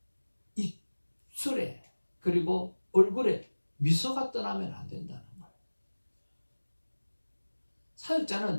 입술에 그리고 얼굴에 미소가 떠나면 안 된다는 거예요.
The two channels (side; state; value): both; inverted; correlation -1.00